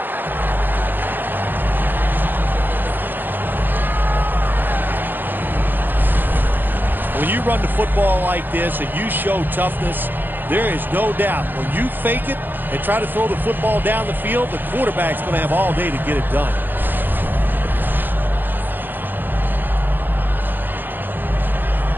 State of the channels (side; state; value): left; late; 0.091 ms